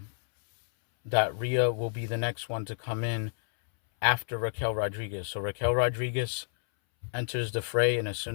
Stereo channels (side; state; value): right; silent; 58 dB below the other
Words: Rhea will be the next one to come in after Raquel Rodriguez. So Raquel Rodriguez enters the fray, and as